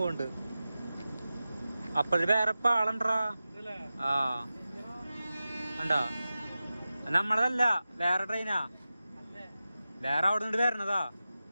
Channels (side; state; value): both; inverted; correlation -0.94